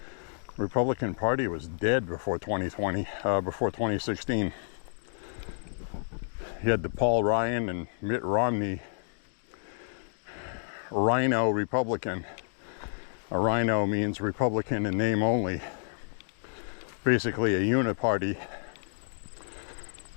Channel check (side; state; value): right; silent; digital silence